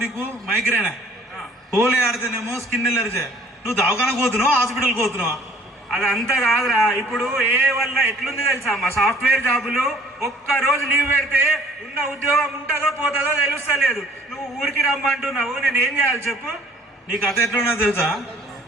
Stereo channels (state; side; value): normal; both; correlation 0.56